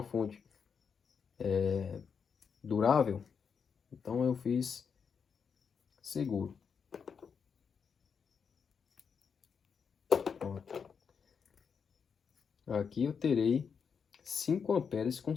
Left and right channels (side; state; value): right; quieter; 6.4 dB